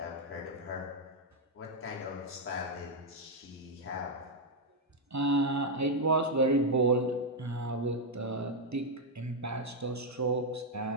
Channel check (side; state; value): both; normal; correlation 0.00